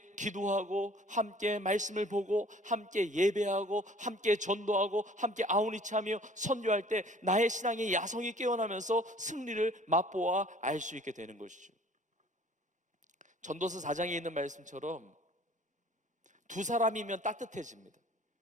기도하고, 함께 말씀을 보고, 함께 예배하고, 함께 전도하고, 함께 아우니치하며 선교할 때 나의 신앙의 야성이 깨어나면서 승리를 맛보아 알 수 있게 되는 것이죠. 전도서 4장에 있는 말씀처럼 두 사람이면 따뜻해집니다.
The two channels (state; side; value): normal; both; correlation 0.52